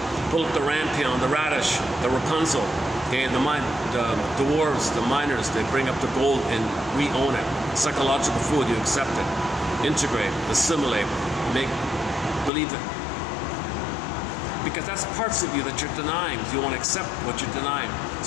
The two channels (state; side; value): drops out; right; at 12.5 s